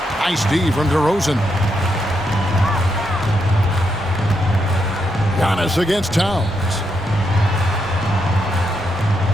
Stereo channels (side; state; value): both; normal; correlation 0.81